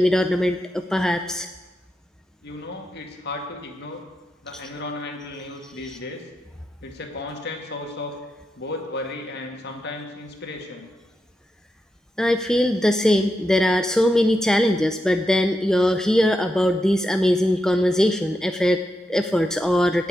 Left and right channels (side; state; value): both; normal; correlation 0.86